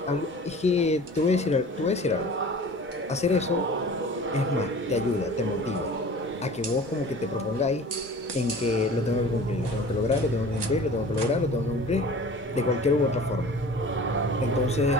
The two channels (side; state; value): both; normal; correlation 0.43